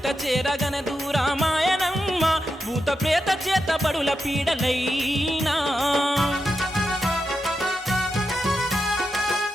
చేరగన దూరామాయనమ్మ భూత ప్రేత చేత బడుల పీడలైనా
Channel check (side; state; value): both; normal; correlation 0.88